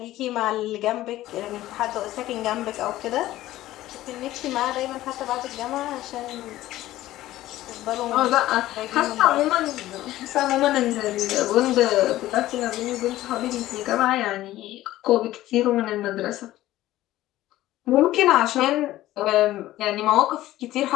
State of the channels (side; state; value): right; quieter; 15.3 dB